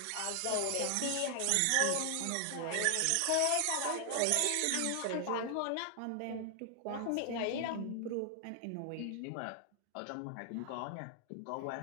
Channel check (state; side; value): different; both; correlation 0.00